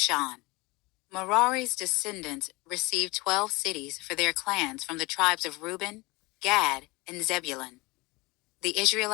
Merari's descendants received 12 cities for their clans from the tribes of Reuben, Gad, and Zebulun. The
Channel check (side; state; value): right; quieter; 23.8 dB